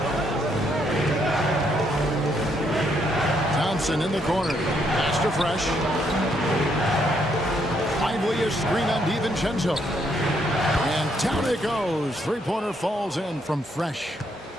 Thompson in the corner. Pass to Fresh. Lively a screen on DiVincenzo. And down it goes. Three-pointer falls in from Fresh.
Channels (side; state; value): both; normal; correlation 0.73